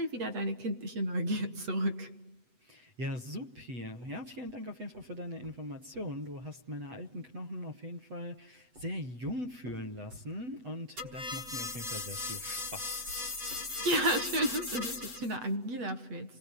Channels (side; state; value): left; late; 8.1 ms